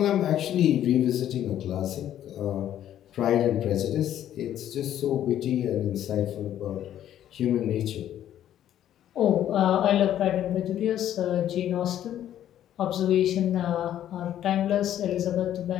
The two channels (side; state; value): right; quieter; 11.3 dB